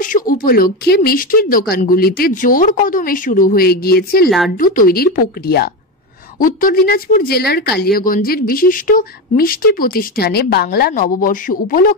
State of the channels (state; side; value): normal; both; correlation 0.17